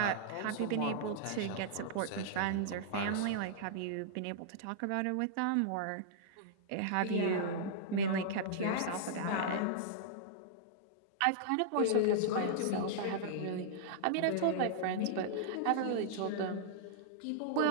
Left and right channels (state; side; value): different; both; correlation -0.02